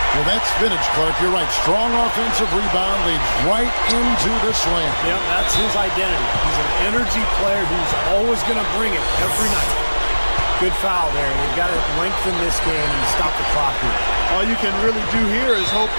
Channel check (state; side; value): inverted; both; correlation -1.00